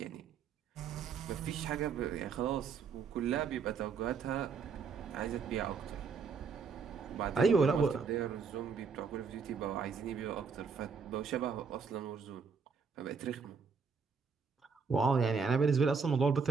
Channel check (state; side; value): quieter; left; 5.5 dB